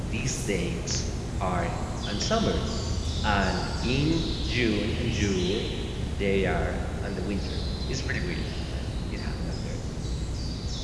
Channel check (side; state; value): both; identical; correlation 1.00